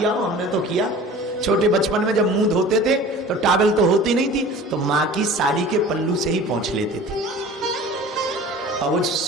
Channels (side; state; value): both; normal; correlation 0.42